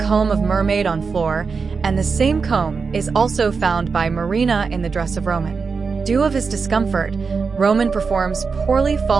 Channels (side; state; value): left; quieter; 5.1 dB